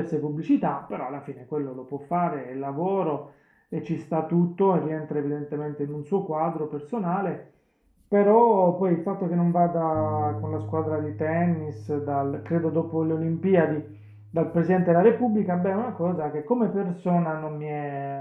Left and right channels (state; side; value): identical; both; correlation 1.00